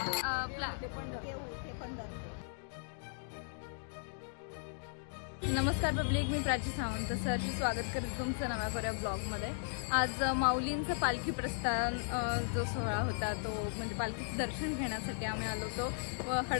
नमस्कार पब्लिक, मी प्राची सावंत सरची स्वागत करते तुमचं नव्या कोऱ्या ब्लॉगमध्ये. आज माऊलींचं पालखी प्रस्थान जो सोहळा होता तो म्हणजे पालखीचं दर्शन घेण्यासाठी आम्ही आलो होतो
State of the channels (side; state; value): right; silent; digital silence